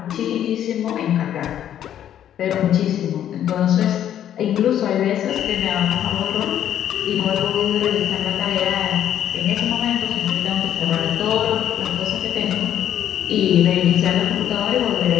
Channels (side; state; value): right; quieter; 10.6 dB